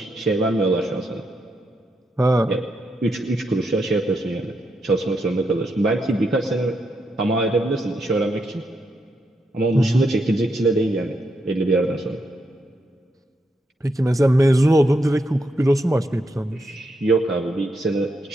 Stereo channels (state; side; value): normal; both; correlation 0.81